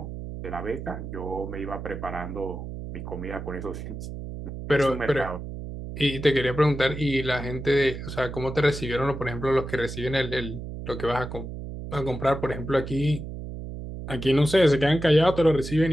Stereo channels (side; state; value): right; noise; hum, 8 dB below the sound